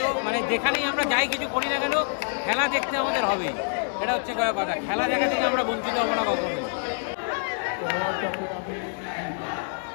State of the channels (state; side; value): silent; right; digital silence